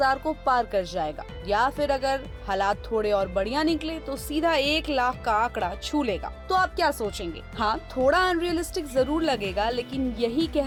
को पार कर जाएगा, या फिर अगर हालात थोड़े और बढ़िया निकले तो सीधा 1 लाख का आंकड़ा छू लेगा। तो आप क्या सोचेंगे? हाँ, थोड़ा अनरियलिस्टिक जरूर लगेगा, लेकिन यही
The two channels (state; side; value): identical; both; correlation 1.00